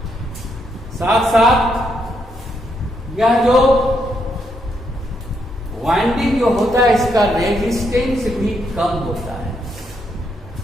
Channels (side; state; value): both; normal; correlation 0.77